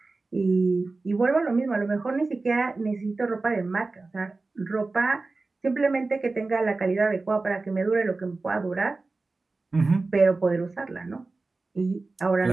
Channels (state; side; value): quieter; left; 3.6 dB